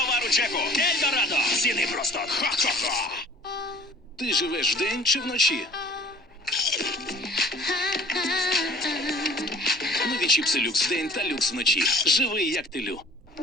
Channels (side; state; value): both; normal; correlation 0.50